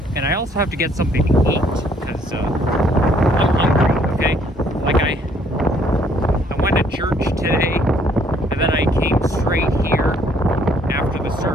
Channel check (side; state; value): both; normal; correlation 0.64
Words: And I also have to get something to eat, because I'm hungry, okay? Like, I went to church today, and then I came straight here after the